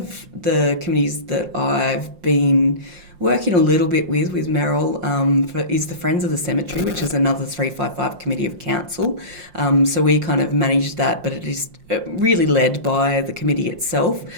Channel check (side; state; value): left; late; 5.6 ms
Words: the committees that I've been working a little bit with Merrill is the Friends of the Cemetery, which is another 355 committee of council. So we kind of manage that, but it is really led by the committee itself.